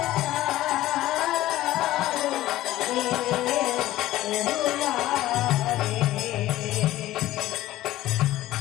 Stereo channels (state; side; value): quieter; right; 15.4 dB